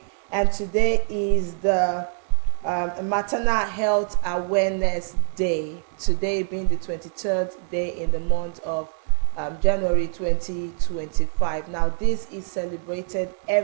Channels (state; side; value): silent; left; 63 dB below the other